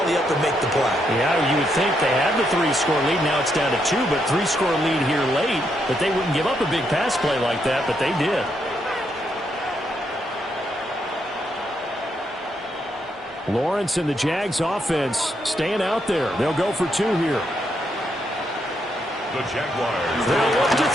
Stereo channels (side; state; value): both; normal; correlation 0.78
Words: up and make the play. Yeah, you would think they had the 3-score lead. Now it's down to 2, but 3-score lead here late. But they wouldn't give up a big pass play like that, but they did. Lawrence and the Jags offense staying out there. They'll go for 2 here. The Jaguars. They'll look to